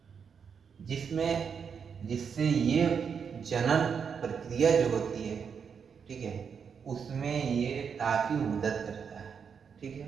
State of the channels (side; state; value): left; quieter; 6.6 dB